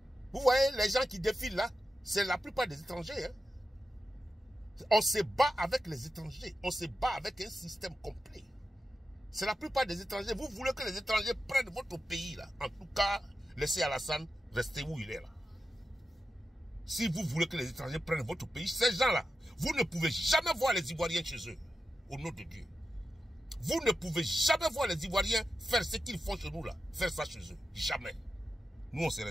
Vous voyez, les gens qui défilent là, c'est la plupart des étrangers. Hein? On se bat avec les étrangers. On se bat avec un système complet. C'est la plupart des étrangers. Vous voulez que les étrangers prennent votre pays là. En tout cas, laissez Alassane rester où il est là. Si vous voulez que les étrangers prennent votre pays, ces gens-là, vous ne pouvez jamais voir les Ivoiriens chez eux. Au nom de Dieu. Vous ne pouvez jamais voir les Ivoiriens faire ce qu'ils font chez nous là. Faire ça chez eux. Jamais. Nous, on se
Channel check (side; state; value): both; normal; correlation 0.90